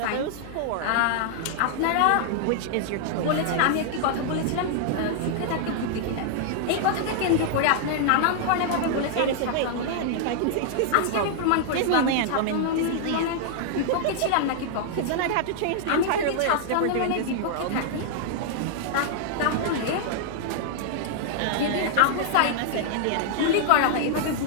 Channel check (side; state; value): both; different; correlation -0.01